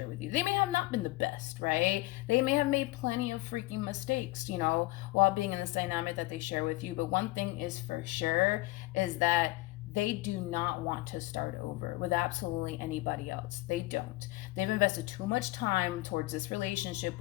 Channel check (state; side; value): quieter; right; 20.0 dB